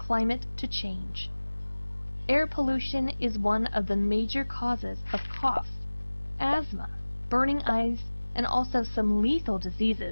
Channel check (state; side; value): inverted; both; correlation -1.00